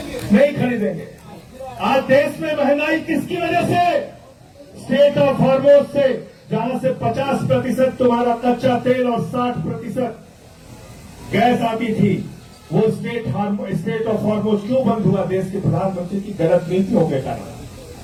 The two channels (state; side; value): identical; both; correlation 1.00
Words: नहीं खरीदेंगे। आज देश में महंगाई किसकी वजह से? स्टेट ऑफ हॉर्मोज से, जहां से 50% तुम्हारा कच्चा तेल और 60% गैस आती थी। वो स्टेट ऑफ हॉर्मोज क्यों बंद हुआ? देश के प्रधानमंत्री की गलत नीतियों के कारण।